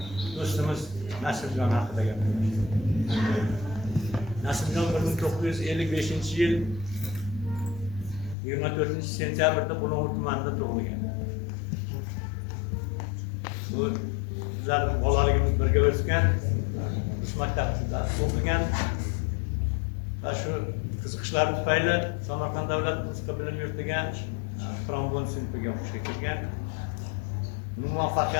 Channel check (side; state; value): right; drops out; at 8.3 s